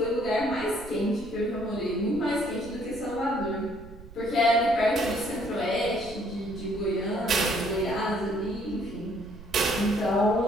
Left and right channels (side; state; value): right; noise; rumble, 16 dB below the sound